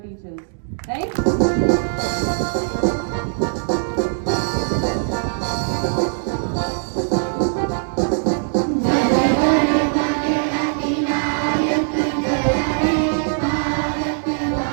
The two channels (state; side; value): silent; left; digital silence